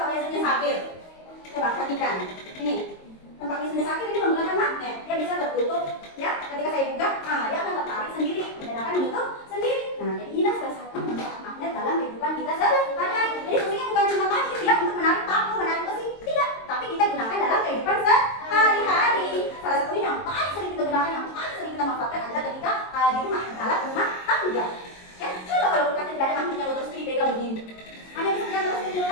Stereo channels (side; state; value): right; late; 22 ms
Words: biasanya sakit. Coba perhatikan. Ini tempat biasanya sakit ini menggunakan magnet. Dia bisa tertutup. Ya, ketika saya buka, dia akan tertarik sendiri dan akan menutup sendiri. Nah, jadi inilah salah satu manfaat magnet dalam kehidupan kita sehari-hari. Jadi fungsinya bukan cuma tadi ya untuk menarik paku, menarik besi, tidak. Tapi kita gunakan dalam kehidupan sehari-hari. Salah satunya yang paling sering kita gunakan, yang paling sering kita manfaatkan adalah ketika di rumah, alat rumah tangga. Ya, coba kalau kulkasnya tidak ada magnetnya terus dipegang begini. Hanya bisa pegang terus di